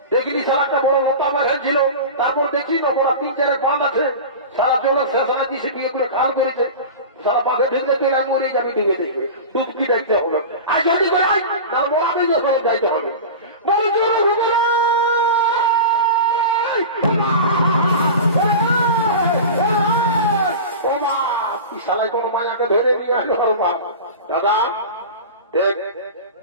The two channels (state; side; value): inverted; both; correlation -0.30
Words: দেখিনি সারা একটা বড় মোটা মাঝাই ছিল তারপর দেখি না বড় 3-4 পান আছে সারা জন্য শেষানা দিছে বিয়ে করে খাল করেছে সারা পাশে ঢুকলে তুই রাগ মরিয়ে যাবি ঢুকে দেখবে টুপকি দেখতে হবে আর যদি করে তার বড় আপনি সব যাইতে হবে সালাই কোন মায়াকে ধরে নিয়ে আসলো দাদা দেখ